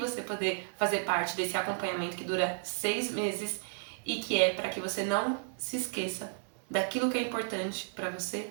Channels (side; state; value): left; silent; 56 dB below the other